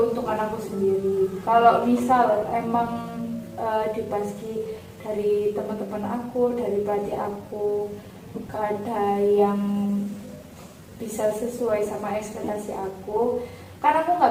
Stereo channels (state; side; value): identical; both; correlation 1.00